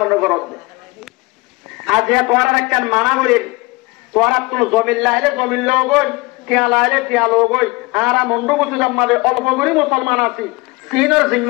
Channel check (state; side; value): quieter; right; 24.0 dB